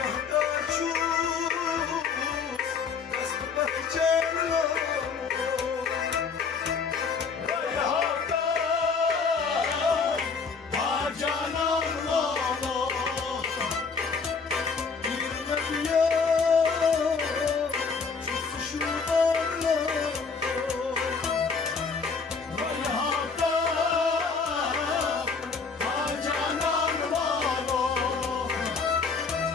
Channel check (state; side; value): quieter; right; 5.2 dB